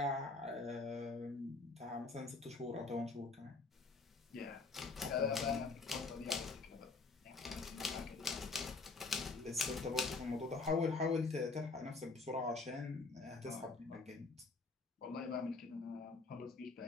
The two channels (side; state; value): right; quieter; 3.8 dB